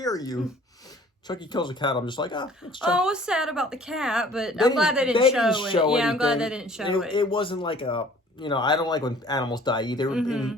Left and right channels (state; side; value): normal; both; correlation 0.53